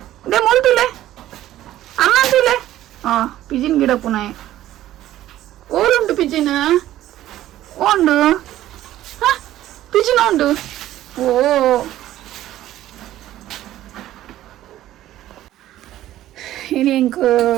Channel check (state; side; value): quieter; left; 13.7 dB